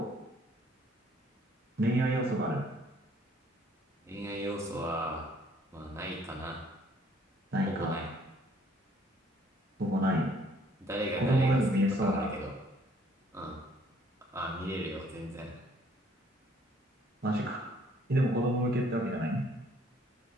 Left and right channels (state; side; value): normal; both; correlation 0.62